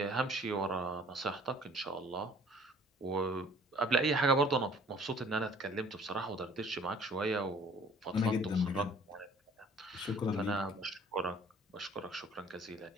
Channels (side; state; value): both; normal; correlation 0.53